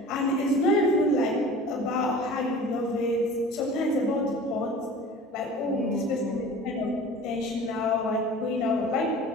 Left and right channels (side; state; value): both; normal; correlation 0.41